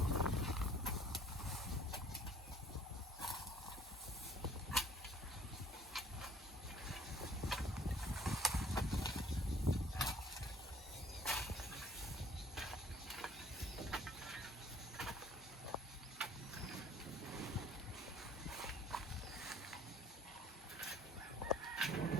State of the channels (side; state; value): both; normal; correlation 0.55